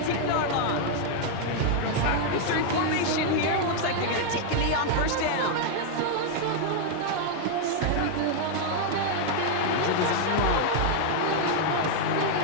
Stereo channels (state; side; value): different; both; correlation 0.00